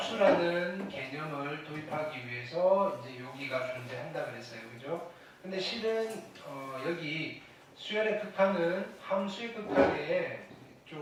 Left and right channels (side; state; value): both; identical; correlation 1.00